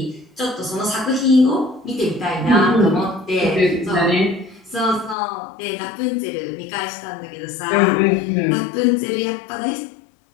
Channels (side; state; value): right; drops out; at 5.2 s